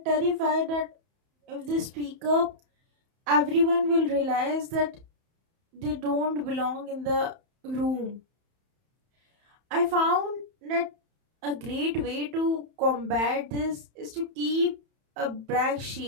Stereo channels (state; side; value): late; left; 31 ms